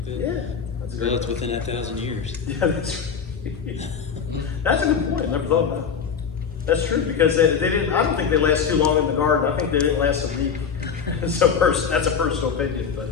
like that. yeah, Well, it's within that 1,000 years. yeah, that's right. That's a good point. I never thought about it. That's true because they didn't. I don't think they last too long in the garden. I think they didn't last a week. So that's a personal opinion, but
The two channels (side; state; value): right; quieter; 6.6 dB